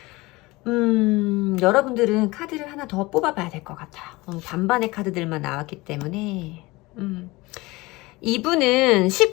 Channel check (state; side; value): quieter; right; 21.9 dB